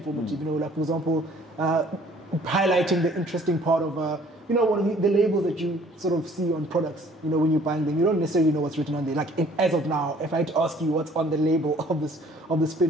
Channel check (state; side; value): normal; both; correlation 0.56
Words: Like, for example, highlighting the interesting part of you know, one of the labels that you sort of see on products, you know, when you're buying them, you don't necessarily know what's written on there. Like, as of now, if I had to ask you what's on the label of the